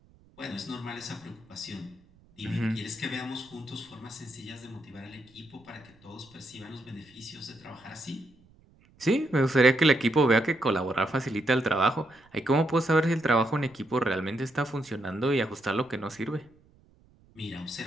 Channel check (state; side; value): noise; right; rumble, 29 dB below the sound